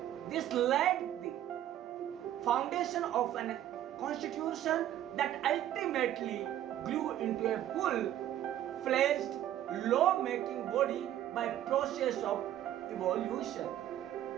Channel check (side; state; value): left; quieter; 12.1 dB